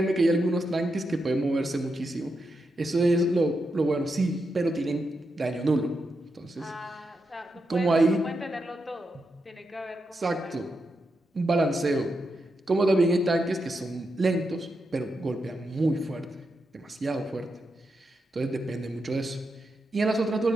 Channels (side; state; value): both; normal; correlation 0.86